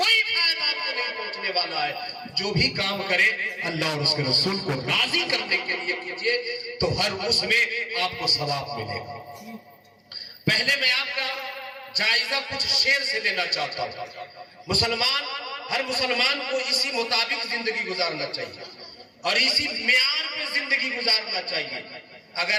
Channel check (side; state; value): both; identical; correlation 1.00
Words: فائدہ آپ کو نہیں پہنچنے والا ہے۔ جو بھی کام کرے اللہ اور اس کے رسول کو راضی کرنے کے لیے کیجئے، تو ہر اس میں آپ کو ثواب ملے گا۔ پہلے میں آپ کا جائزہ کچھ شعر سے لینا چاہتا ہوں۔ ہر مسلمان کو اسی مطابق زندگی گزارنا چاہیے اور اسی معیار پہ زندگی گزارنا چاہیے۔